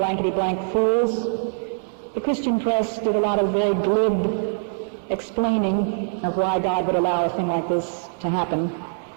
fools. The Christian press did a lot of very glib explaining of why God would allow a thing like this to happen.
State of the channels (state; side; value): silent; left; digital silence